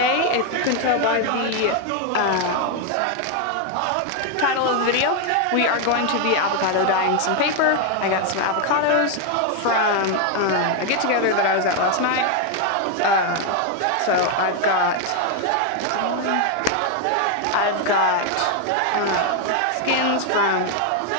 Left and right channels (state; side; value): different; both; correlation 0.01